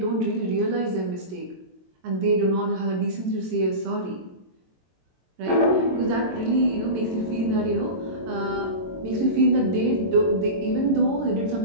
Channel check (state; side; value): late; left; 22 ms